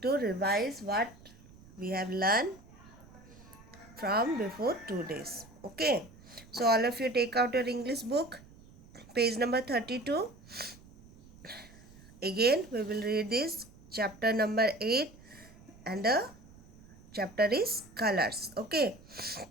to revise what we have learned from before 2 days. Okay. So all of you take out your English book, page number 32. Again we will read this chapter number 8 and the chapter is colors. Okay.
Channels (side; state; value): right; noise; rumble, 22 dB below the sound